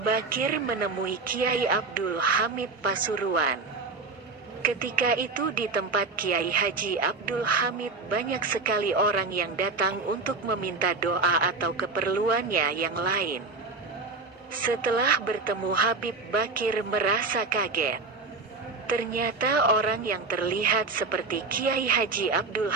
Bakir menemui Kiai Abdul Hamid Pasuruan. Ketika itu di tempat Kiai Haji Abdul Hamid banyak sekali orang yang datang untuk meminta doa atau keperluannya yang lain. Setelah bertemu Habib Bakir merasa kaget. Ternyata orang yang terlihat seperti Kiai Haji Abdul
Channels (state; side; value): quieter; left; 3.9 dB